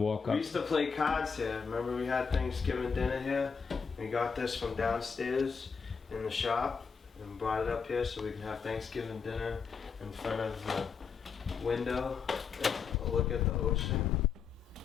up. We used to play cards here. Remember, we had Thanksgiving dinner here. We got this from downstairs in the shop and brought it up here so we can have Thanksgiving dinner in front of the window. Look at the ocean.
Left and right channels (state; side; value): quieter; right; 5.8 dB